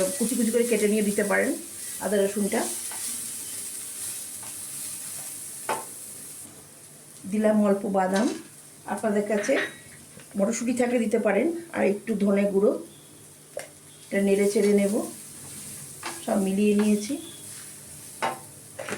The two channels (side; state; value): both; identical; correlation 1.00